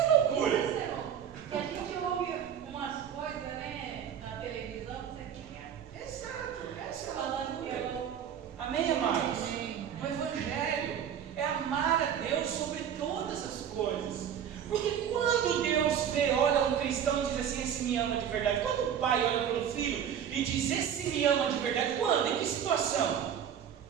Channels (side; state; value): left; quieter; 8.9 dB